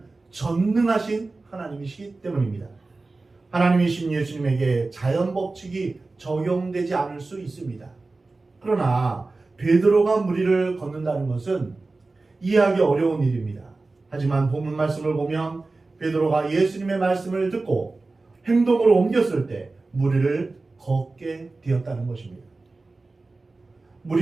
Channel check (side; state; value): left; quieter; 3.5 dB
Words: 전능하신 하나님이시기 때문입니다. 하나님이신 예수님에게 자연 법칙이 적용되지 않을 수 있습니다. 그러나 베드로가 물 위를 걷는다는 것은 이해하기 어려운 일입니다. 하지만 본문 말씀을 보면 베드로가 예수님의 말씀을 듣고 행동으로 옮겼을 때 물 위를 걷게 되었다는 것입니다.